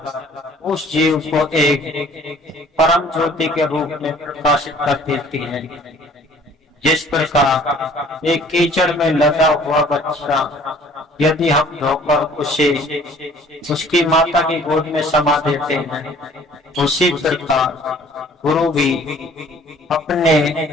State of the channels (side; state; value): both; normal; correlation 0.54